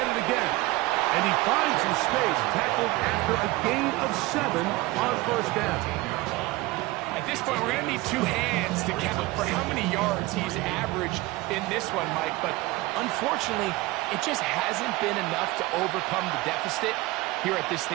it again. And he finds some space, tackled after a gain of 7 on first down. At this point, we're going to need 2 hands to count for how many yards he's averaged in this one, Mike. But unfortunately, it just hasn't been enough to overcome the deficit here at this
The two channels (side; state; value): left; quieter; 20.1 dB